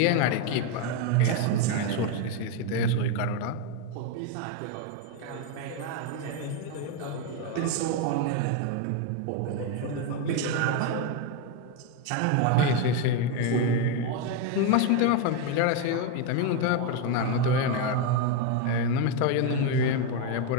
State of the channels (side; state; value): both; different; correlation 0.02